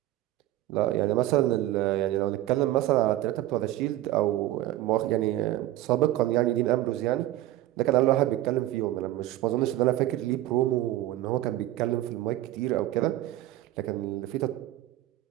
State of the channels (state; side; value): quieter; left; 15.2 dB